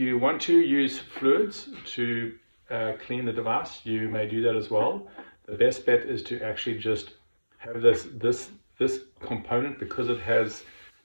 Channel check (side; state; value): both; inverted; correlation -1.00